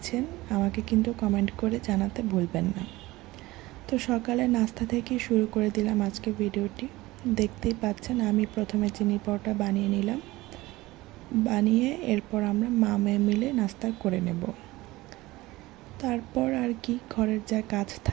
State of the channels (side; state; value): left; quieter; 19.3 dB